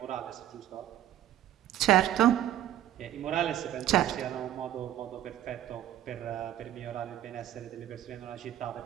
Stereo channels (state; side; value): quieter; left; 12.5 dB